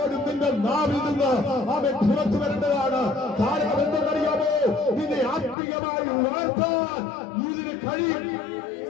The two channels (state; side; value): drops out; right; at 5.6 s